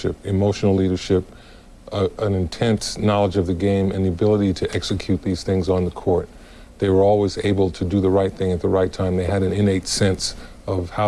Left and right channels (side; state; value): both; identical; correlation 1.00